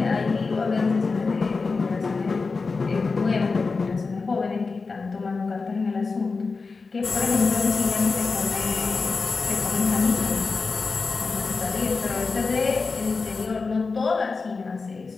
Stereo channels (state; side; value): quieter; right; 4.3 dB